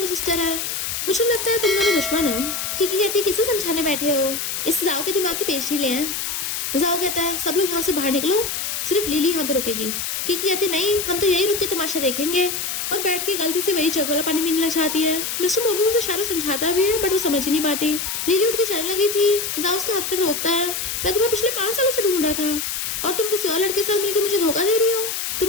सिस्टर है, मुझे लगता है तुम दोनों दुश्मन हो। किकी कहती किसे समझाने बैठे हो, इस जाओ के दिमाग के पेज ढीले हैं। जाओ कहता है सब लोग यहाँ से बाहर निकलो, सिर्फ लिली यहाँ पे रुकेगी। किकी कहती नहीं हम तो यही रुक के तमाशा देखेंगे और बैठ के गलती से वही जग वाला पानी पीने लग जाती है। मिस्टर मोकिंग उसे इशारा समझाता भी है बट वो समझ ही नहीं पाती। लिली उठ के चलने लगी थी, जाओ उसका हाथ कर रोकता है मैं तुम्हें पिछले 5 सालों से ढूंढ रहा था और तुम किसी और लड़के से मिलकर मुझे धोखा दे रही हो।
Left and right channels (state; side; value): noise; left; hiss, 3 dB below the sound